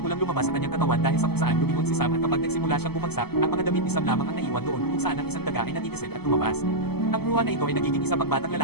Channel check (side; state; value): right; late; 0.96 ms